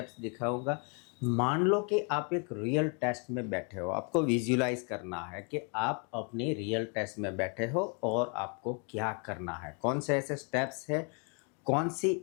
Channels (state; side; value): quieter; right; 37.0 dB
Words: दिखाऊंगा। मान लो कि आप एक रियल टेस्ट में बैठे हो, आपको विजुलाइज करना है कि आप अपने रियल टेस्ट में बैठे हो और आपको क्या करना है, कौन से ऐसे स्टेप्स है, कौन सी